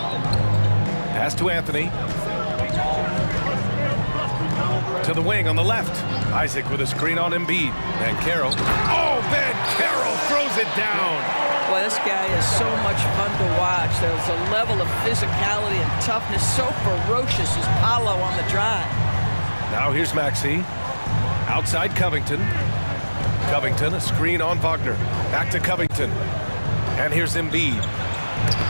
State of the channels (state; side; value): inverted; both; correlation -1.00